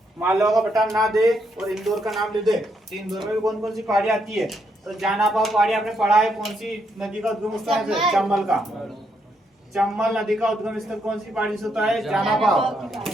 मालवा का पठार ना दे और इंदौर का नाम ले दे, तो इंदौर में भी कौन कौन सी पहाड़ी आती है? तो जानापाव पहाड़ी आपने पढ़ा है। कौन सी नदी का उद्गम स्थल है? चंबल का। चंबल नदी का उद्गम स्थल कौन सी पहाड़ी से होता है? जानापाव।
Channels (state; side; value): normal; both; correlation 0.77